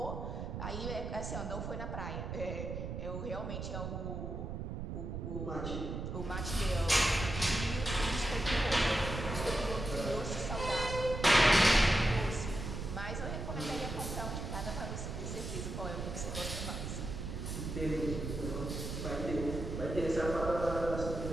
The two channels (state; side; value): noise; right; rumble, 5 dB below the sound